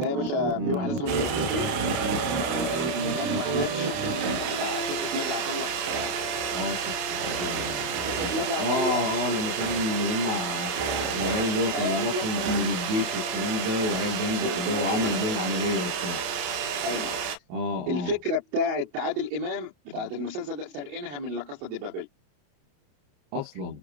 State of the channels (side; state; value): left; late; 29 ms